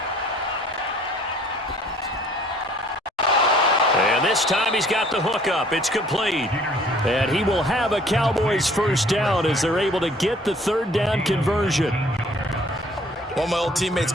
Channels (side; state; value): both; normal; correlation 0.56